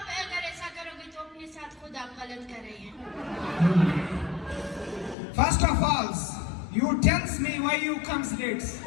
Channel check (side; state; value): right; drops out; at 5.2 s